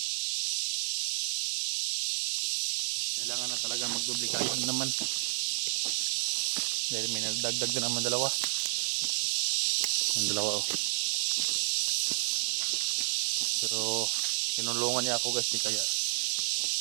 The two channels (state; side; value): silent; left; digital silence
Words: Kailangan na talaga magduplikado naman. Dahil may nagdagdag na naman dalawa. Ang dalawa, oh. Pero tinulungan niya ako, guys, kaya